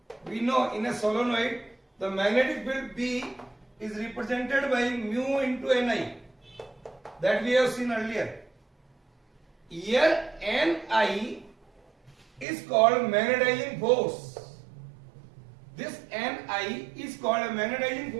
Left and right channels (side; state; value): left; drops out; at 12.5 s